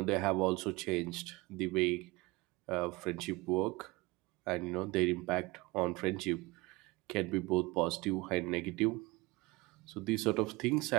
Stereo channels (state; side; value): quieter; left; 22.7 dB